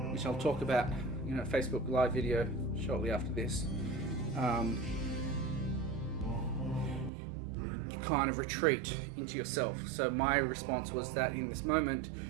which I'll talk about in a Facebook live video shortly after this. You kind of retreat into yourself. So my response was that in this moment,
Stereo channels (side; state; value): left; drops out; at 7.1 s